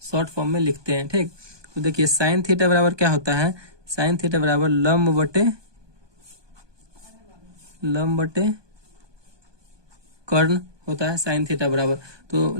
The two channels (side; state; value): left; late; 1.2 ms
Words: शॉर्ट फॉर्म में लिखते हैं, ठीक। तो देखिए साइन थीटा बराबर क्या होता है, साइन थीटा बराबर लंब बटे कर्ण होता है, साइन थीटा बराबर। तो